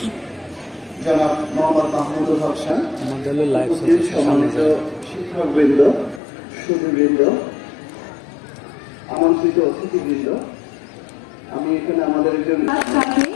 জনাব মোহাম্মদ মাহমুদুল হক খান, উপস্থিত সম্মানিত শিক্ষকবৃন্দ, সুধীবৃন্দ, আমন্ত্রিত অতিথিবৃন্দ। আমি এখানে আমাদের একজন তাকে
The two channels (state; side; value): drops out; right; at 6.2 s